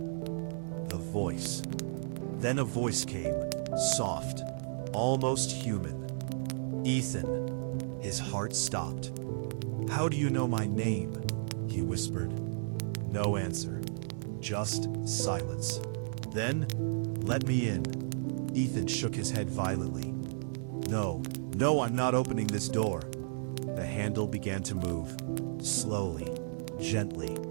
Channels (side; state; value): left; silent; 55 dB below the other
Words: The voice. Then a voice came, soft, almost human. "Ethan." His heart stopped. "How do you know my name?" he whispered. No answer. Just silence. Then, "Let me in." Ethan shook his head violently. No, I'm not opening this door." The handle began to move, slowly, gently,